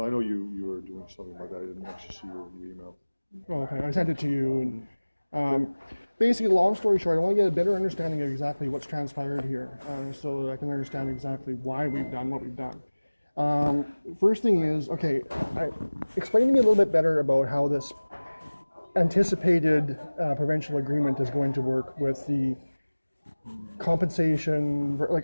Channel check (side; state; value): both; inverted; correlation -1.00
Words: I know you were doing something like that. I didn't actually see your email. Oh, okay, I sent it to you. And basically, long story short, I want to get a better understanding of exactly what's transpired here, so that I can understand exactly why we've done what we've done. First thing is, okay, explain to me a little bit better about how this anticipated provincial agreement is going to work with the compensation.